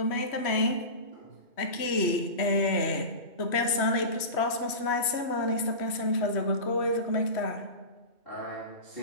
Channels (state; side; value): late; right; 3.1 ms